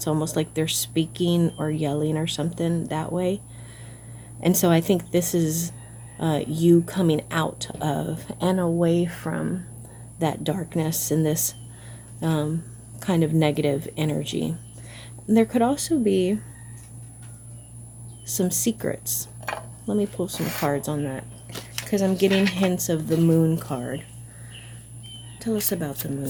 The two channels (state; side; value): identical; both; correlation 1.00